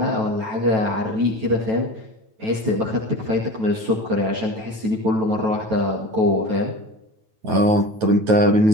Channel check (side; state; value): left; late; 9.2 ms